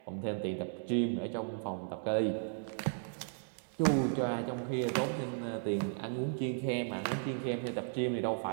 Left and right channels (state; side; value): silent; left; digital silence